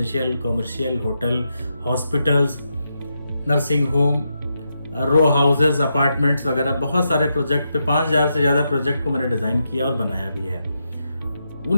commercial, hotel, hospitals, nursing home, row houses, apartments वगैरह बहुत सारे प्रोजेक्ट पे 5000 से ज़्यादा प्रोजेक्ट को मैंने डिज़ाइन किया और बनाया भी है।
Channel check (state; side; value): inverted; both; correlation -0.84